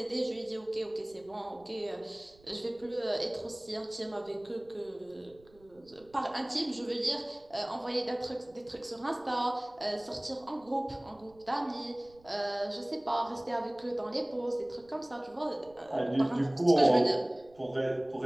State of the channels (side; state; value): right; noise; rumble, 27 dB below the sound